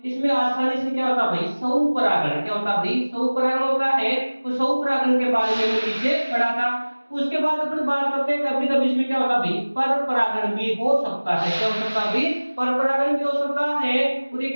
इसमें आसानी से क्या होता है भाई? स्वपरागण। क्या होता है भाई? स्वपरागण होता है। तो स्वपरागण के बारे में पीछे पढ़ा था। उसके बाद अपन बात करते हैं कभी कभी इसमें क्या होता है भाई? पर परागण भी हो सकता है। क्या हो सकता है भाई? पर परागण भी हो सकता है। और ये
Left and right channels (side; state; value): both; inverted; correlation -1.00